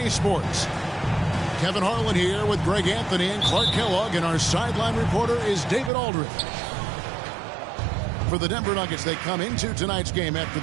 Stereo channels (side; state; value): left; drops out; at 5.9 s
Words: Sports. Kevin Harlan here with Greg Anthony and Clark Kellogg, and our sideline reporter is David Aldridge. For the Denver Nuggets, they come into tonight's game after